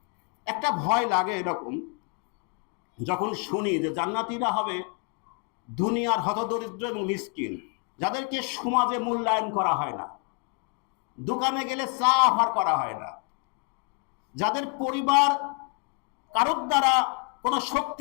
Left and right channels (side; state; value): right; quieter; 35.8 dB